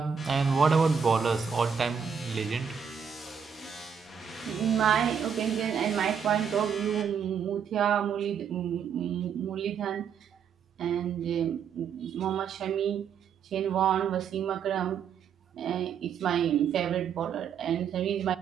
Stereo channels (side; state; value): left; quieter; 7.2 dB